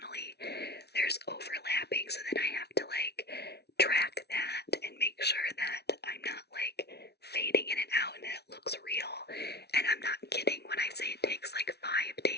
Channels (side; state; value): right; late; 0.48 ms